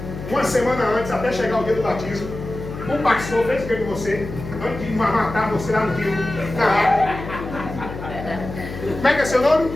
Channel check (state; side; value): noise; left; hum, 10 dB below the sound